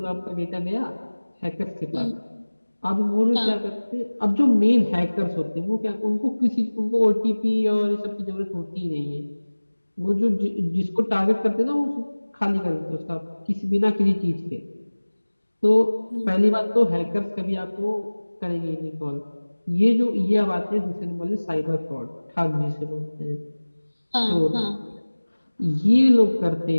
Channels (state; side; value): inverted; both; correlation -1.00